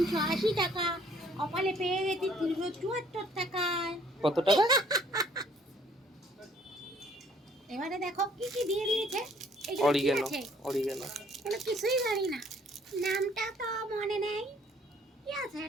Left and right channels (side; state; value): both; normal; correlation 0.60